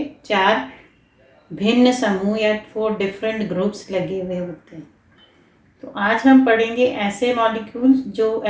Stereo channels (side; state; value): both; identical; correlation 1.00